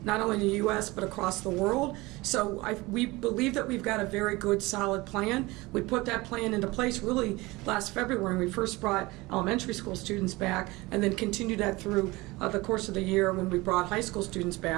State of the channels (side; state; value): left; quieter; 21.8 dB